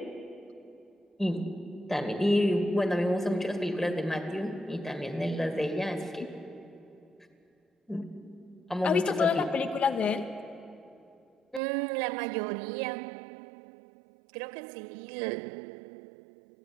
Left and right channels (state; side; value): drops out; left; at 11.6 s